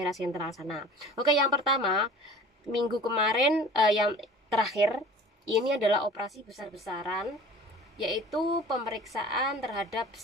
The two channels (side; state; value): both; normal; correlation 0.44